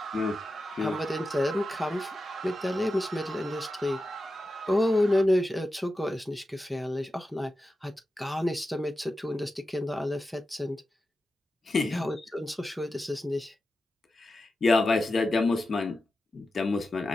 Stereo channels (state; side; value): normal; both; correlation 0.91